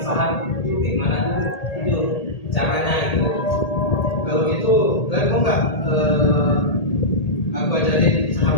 saham itu gimana tuh? Itu caranya itu. Kalau gitu kalian mau nggak aku ajarin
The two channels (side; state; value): right; late; 1.8 ms